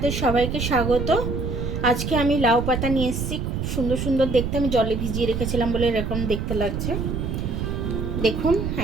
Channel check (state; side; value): noise; right; rumble, 2 dB below the sound